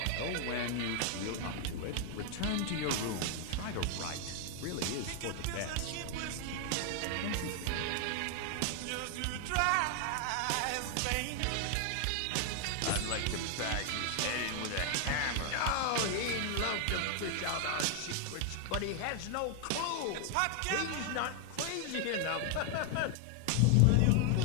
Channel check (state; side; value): different; both; correlation 0.00